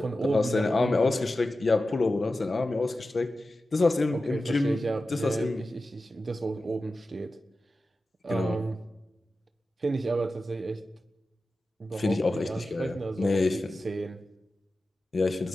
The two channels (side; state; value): both; normal; correlation 0.93